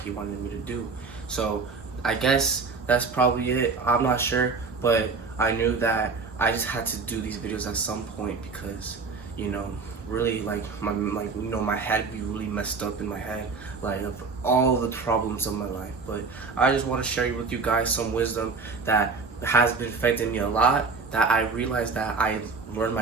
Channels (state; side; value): quieter; left; 4.5 dB